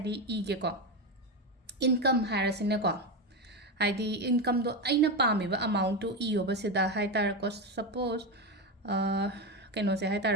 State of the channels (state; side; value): normal; both; correlation 0.14